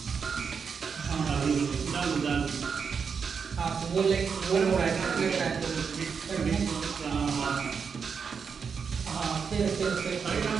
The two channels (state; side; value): quieter; left; 6.1 dB